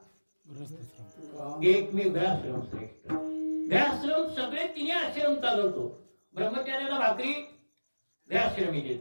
एकमेव ग्रहाश्रम श्रेष्ठ. ग्रहाश्रम सगळे तिने आश्रम चालवतो. ब्रह्मचार्याला भाकरी ग्रहाश्रमी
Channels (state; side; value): inverted; both; correlation -1.00